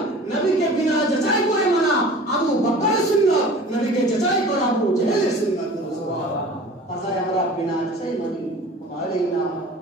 নবীকে বিনা যাচাই করে মানা আবু বকরের সুন্নাত নবীকে যাচাই করা আবু জেহেলের সুন্নাত সুবহানাল্লাহ তাই আমরা বিনা যাচাই মানি আমাদের নাম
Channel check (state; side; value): normal; both; correlation 0.42